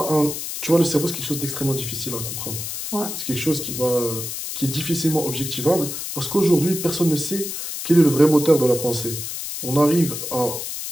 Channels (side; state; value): left; noise; hiss, 6 dB below the sound